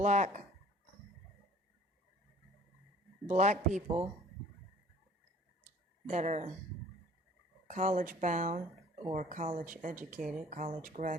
people that are college bound or college educated, college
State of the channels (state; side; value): normal; both; correlation 0.50